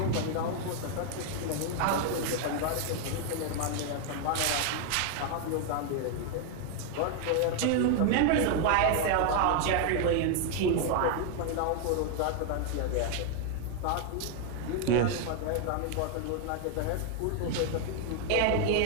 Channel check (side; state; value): both; different; correlation 0.01